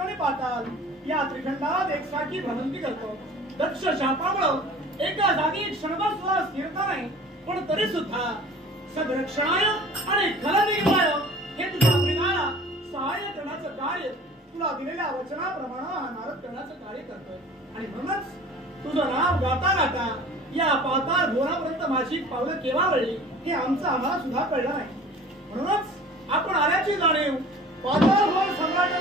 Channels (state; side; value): normal; both; correlation 0.44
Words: आणि पाताल या त्रिखंडात एकसारखी भ्रमंती करतो. दक्ष शापामुळे एका जागी क्षणभर सुद्धा स्थिरता नाही, पण तरी सुद्धा सदरक्षणाय आणि खलनिर्वाय हे तुझ्या प्रेमाला सहाय्य करण्याचं कार्य तुला दिलेल्या वचनाप्रमाणे हा नारद करण्याचं कार्य करतोय. आणि म्हणूनच तुझं नाव गाता गाता या पाताळ घोरापर्यंत माझी पावलं केव्हा वळली हे आम्हाला सुद्धा कळलं नाही. म्हणूनच आपण आल्याची जाणीव पाताळ घोर